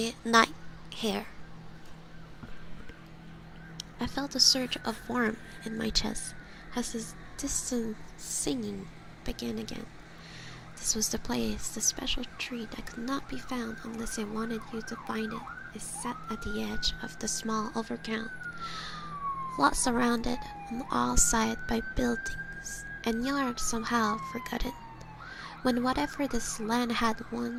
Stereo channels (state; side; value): identical; both; correlation 1.00